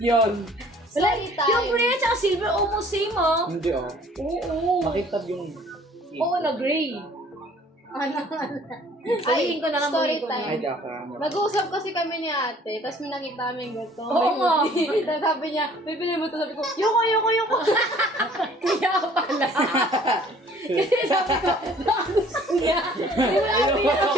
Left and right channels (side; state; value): both; normal; correlation 0.54